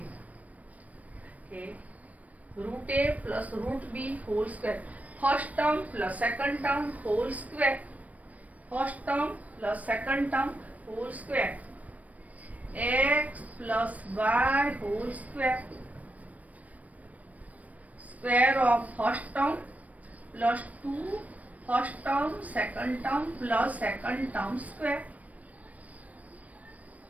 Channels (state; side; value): late; left; 0.070 ms